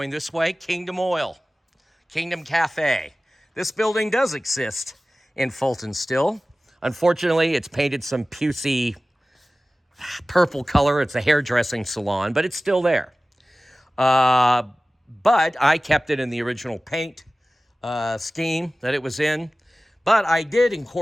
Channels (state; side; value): normal; both; correlation 0.97